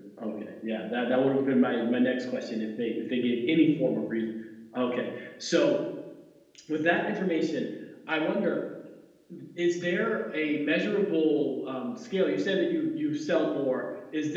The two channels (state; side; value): identical; both; correlation 1.00